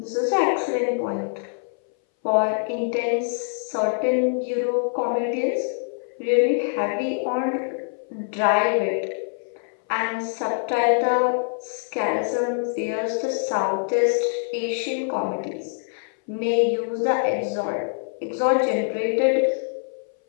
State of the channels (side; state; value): right; silent; 59 dB below the other